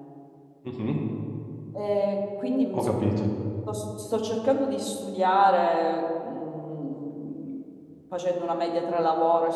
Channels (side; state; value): both; identical; correlation 1.00